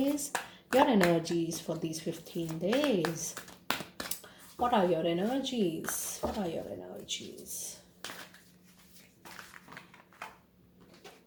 Your energies for these 15 days. What are your energies? What are your energies?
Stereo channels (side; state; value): both; identical; correlation 1.00